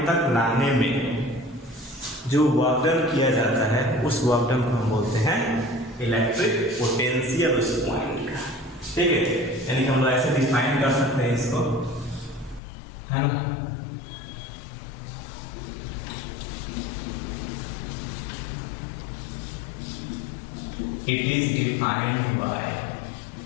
तक लाने में जो वर्क डन किया जाता है उस वर्क डन को हम बोलते हैं इलेक्ट्रिक पोटेंशियल उस पॉइंट का। ठीक है, यानी कि हम लोग ऐसे डिफाइन कर सकते हैं इसको, है ना। It is defined by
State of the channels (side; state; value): right; drops out; at 12.6 s